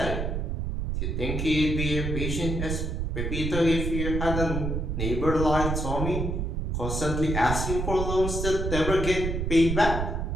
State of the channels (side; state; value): right; noise; rumble, 1 dB below the sound